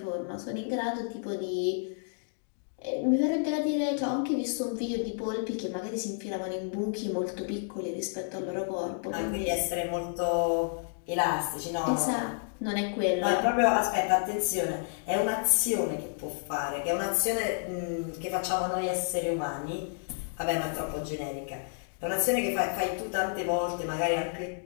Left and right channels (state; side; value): silent; right; digital silence